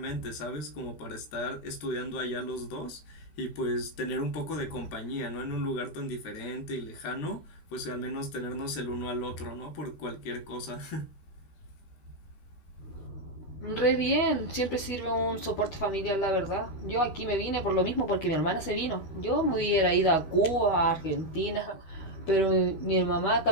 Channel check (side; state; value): right; late; 12 ms